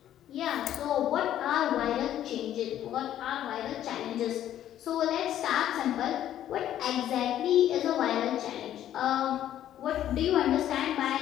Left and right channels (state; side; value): quieter; right; 11.6 dB